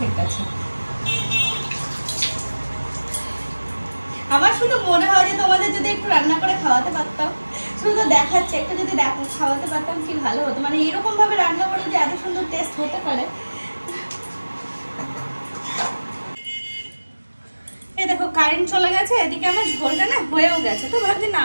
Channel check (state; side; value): inverted; both; correlation -1.00